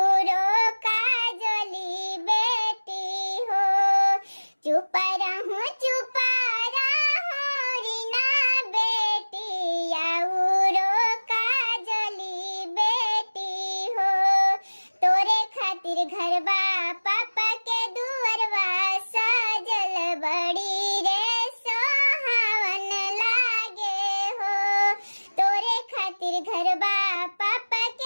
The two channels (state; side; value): inverted; both; correlation -1.00